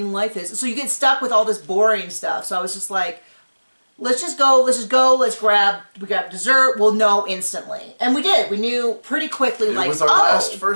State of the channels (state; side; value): inverted; both; correlation -1.00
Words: of life is? So you get stuck with all this boring stuff. So I was just like, let's grab dessert. We'll know instantly. And we did. We knew pretty quickly, It was our last